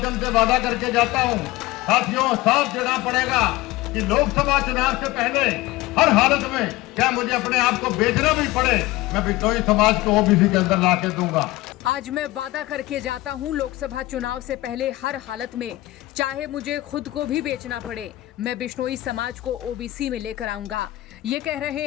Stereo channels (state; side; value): quieter; right; 18.3 dB